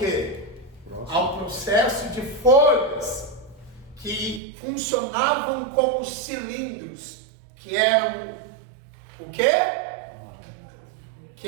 Ao processo de folhas que funcionavam como cilindros, que eram o quê?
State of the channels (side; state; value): left; drops out; at 4.4 s